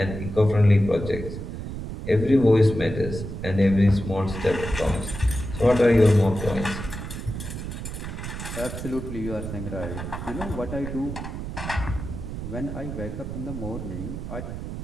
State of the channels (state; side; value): noise; right; rumble, 7 dB below the sound